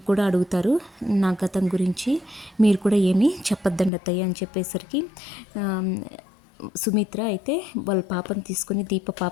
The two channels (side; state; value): right; drops out; at 3.9 s